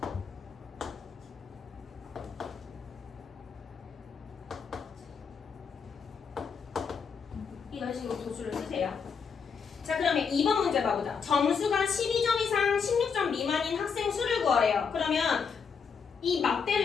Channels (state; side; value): quieter; right; 6.0 dB